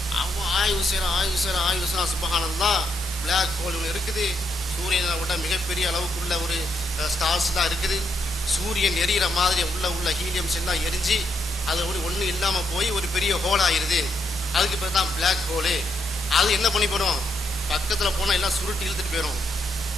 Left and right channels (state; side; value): normal; both; correlation 0.79